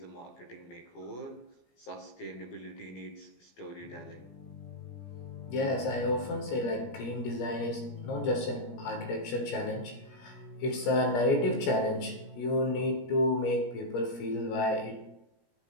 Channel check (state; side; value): late; right; 17 ms